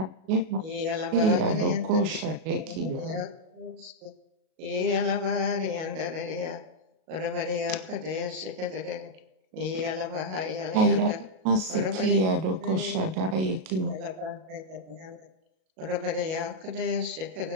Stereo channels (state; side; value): late; left; 37 ms